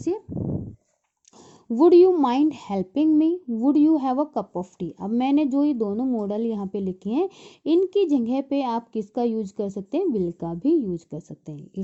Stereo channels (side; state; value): both; identical; correlation 1.00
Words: would you mind helping me, would you have a cup of T. अब मैंने जो ये दोनों मॉडल यहाँ पे लिखे हैं, इनकी जगह पे आप किसका यूज कर सकते हैं, विल का भी यूज कर सकते हैं।